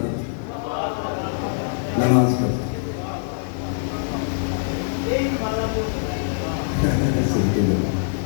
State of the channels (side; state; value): right; silent; digital silence